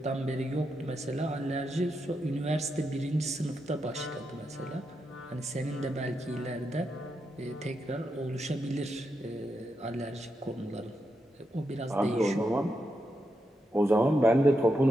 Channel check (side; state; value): both; normal; correlation 0.85